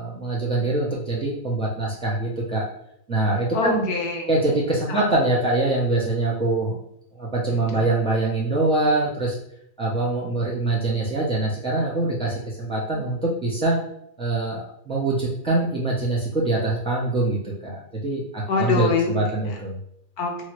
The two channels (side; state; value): right; late; 2.4 ms